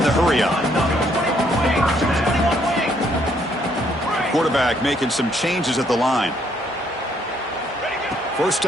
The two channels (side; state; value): both; normal; correlation 0.69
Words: the hurry on. Quarterback making some changes at the line. 1st